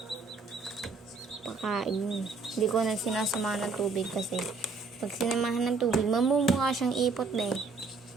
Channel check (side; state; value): left; quieter; 4.2 dB